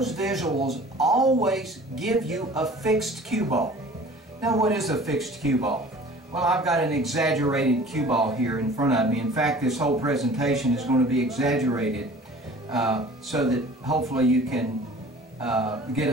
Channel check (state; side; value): normal; both; correlation 0.46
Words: visuals always give you a fixed cue ball. Now, what is a fixed cue ball? Well, I've got an exaggerated cue ball here in front of me. In fact, this whole presentation is going to be exaggerated so that hopefully you can get